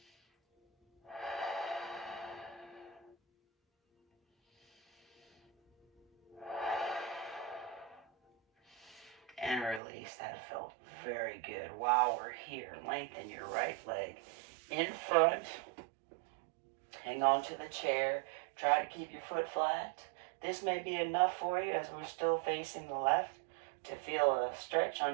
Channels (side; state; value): left; drops out; at 9.8 s